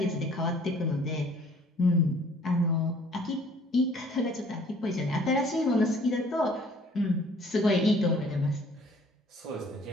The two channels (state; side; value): normal; both; correlation 0.56